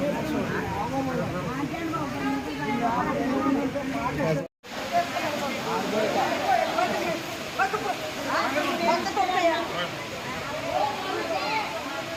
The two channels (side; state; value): both; identical; correlation 1.00